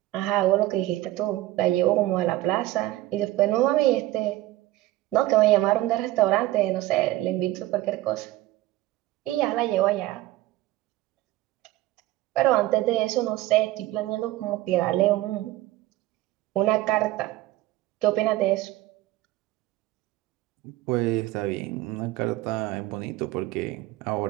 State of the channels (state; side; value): quieter; left; 16.5 dB